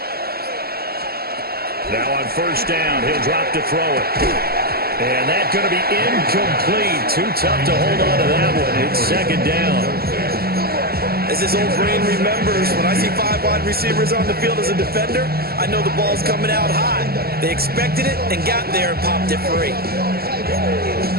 Now on 1st down, he'll drop to throw it. And that's going to be incomplete. Too tough to hold on to that one. It's 2nd down. As this old brain remembers, when I see 5 wide receivers on the field as a defender, I know the ball's coming out high. They expected it and got there and popped it free.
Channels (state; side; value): late; left; 0.45 ms